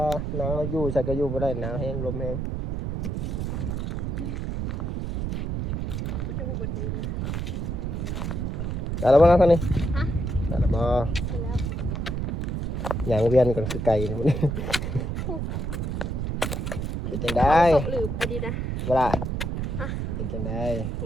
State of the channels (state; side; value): noise; right; rumble, 2 dB below the sound